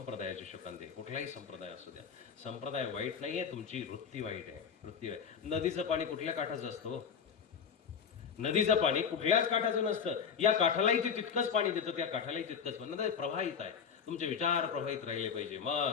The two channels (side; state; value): right; quieter; 6.9 dB